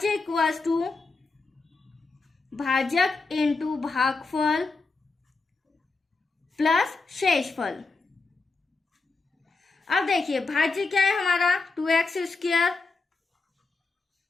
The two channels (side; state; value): right; quieter; 3.9 dB